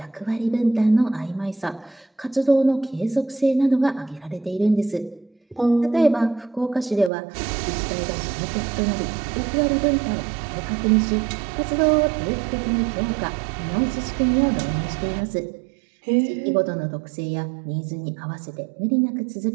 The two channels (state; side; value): drops out; left; at 7.1 s